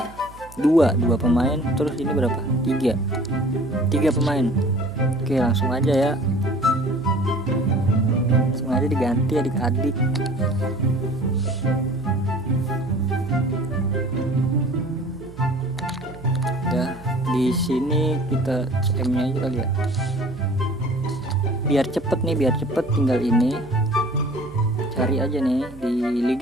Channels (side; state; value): right; noise; hum, 20 dB below the sound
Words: dua pemain. Terus ini berapa? 3 pemain. Oke, langsung aja ya. Langsung aja diganti adik-adik. Ya, di sini kita CM-nya aja kali ya. Biar cepet tinggal ini. Cari aja nih di